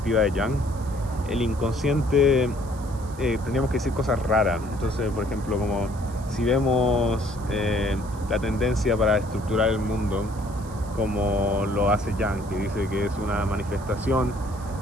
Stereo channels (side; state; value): right; noise; hiss, 22 dB below the sound